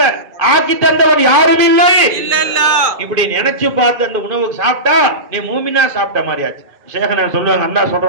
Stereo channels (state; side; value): late; left; 2.5 ms